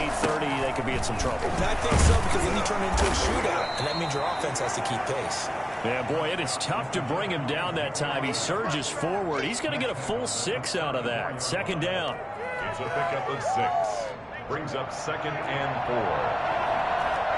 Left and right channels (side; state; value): both; identical; correlation 1.00